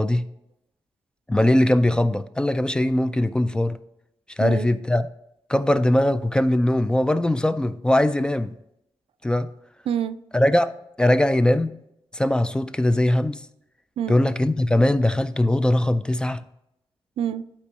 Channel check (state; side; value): normal; both; correlation 0.96